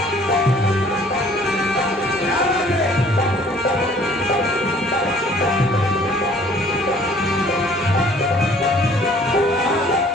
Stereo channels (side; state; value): both; normal; correlation 0.55